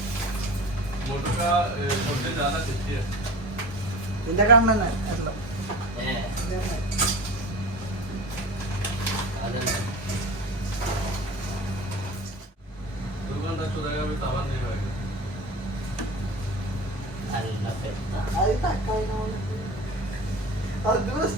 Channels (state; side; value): normal; both; correlation 0.35